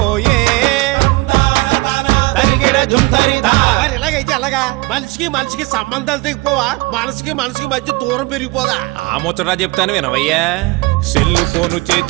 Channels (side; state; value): left; quieter; 23.5 dB